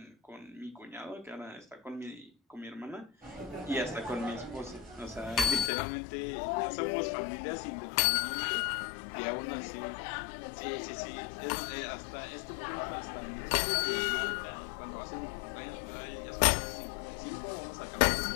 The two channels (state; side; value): drops out; right; at 5.7 s